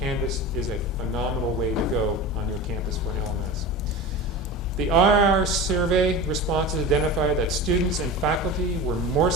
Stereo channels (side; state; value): both; normal; correlation 0.30